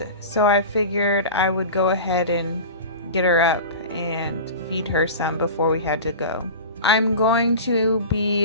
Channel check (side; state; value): both; inverted; correlation -0.32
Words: so I figured I would go ahead and get her up and feed her some before we had to go. I'm going to